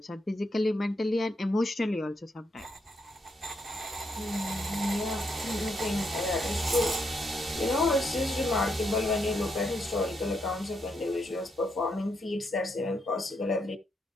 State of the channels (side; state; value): both; normal; correlation 0.79